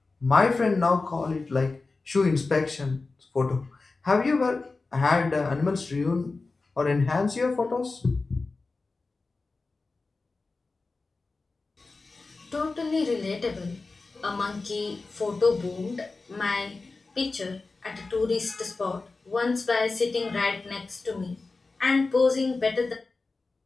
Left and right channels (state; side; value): quieter; right; 3.8 dB